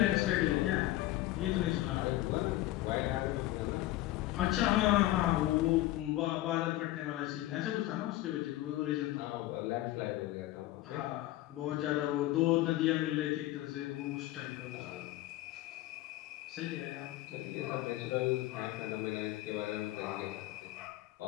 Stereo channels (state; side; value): quieter; right; 16.3 dB